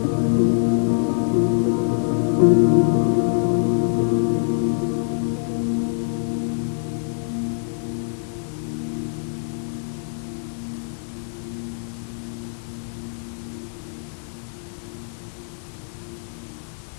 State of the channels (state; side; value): silent; right; 56 dB below the other